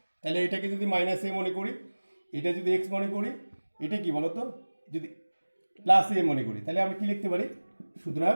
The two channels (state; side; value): inverted; both; correlation -1.00